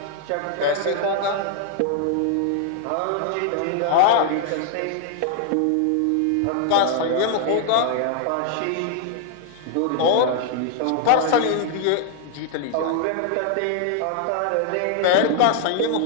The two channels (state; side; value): different; both; correlation 0.00